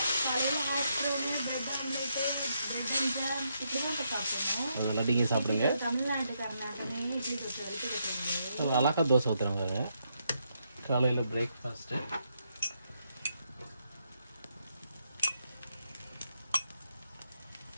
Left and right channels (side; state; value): both; inverted; correlation -0.79